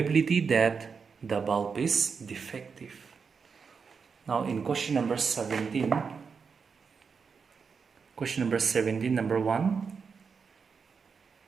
that the bulb is defective? Now in question number 17, number 1,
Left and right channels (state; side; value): quieter; left; 5.7 dB